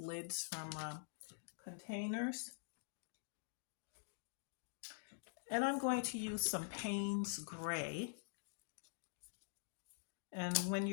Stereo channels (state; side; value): silent; right; digital silence